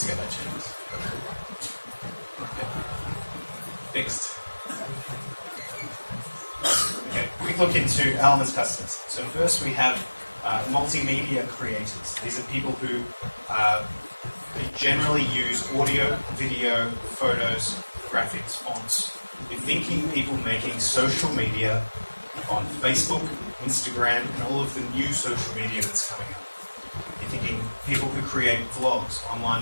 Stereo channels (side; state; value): both; inverted; correlation -1.00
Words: get that changed. Okay. Fixed. Okay, quick look into Elements customers. So first we have multimedia creators. These are people who they generally use audio, video, photos, graphics, fonts. You're thinking people making social media on Facebook, Instagram, and all of the new social media that's coming up. You're thinking people who create vlogs,